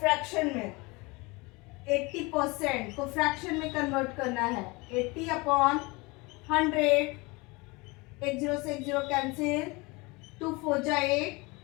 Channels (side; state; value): right; quieter; 25.5 dB